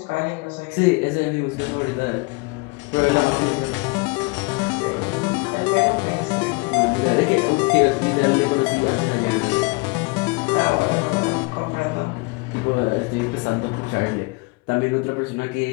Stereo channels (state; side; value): quieter; right; 28.2 dB